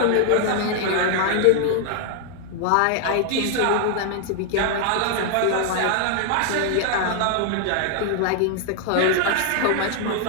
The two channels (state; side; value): different; both; correlation 0.00